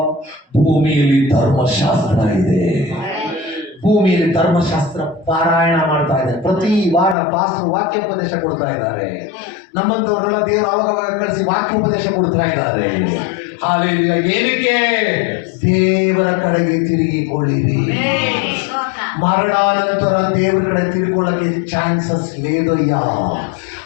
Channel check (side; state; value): right; drops out; at 7.2 s